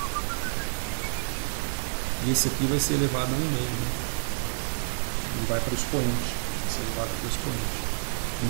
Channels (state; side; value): silent; left; digital silence